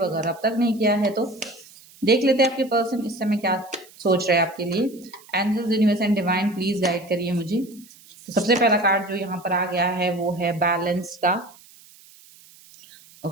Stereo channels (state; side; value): noise; right; hiss, 24 dB below the sound